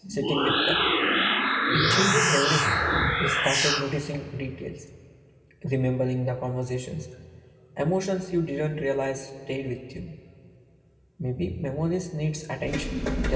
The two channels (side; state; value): both; identical; correlation 1.00